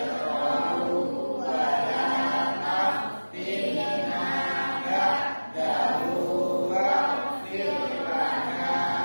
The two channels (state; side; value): inverted; both; correlation -1.00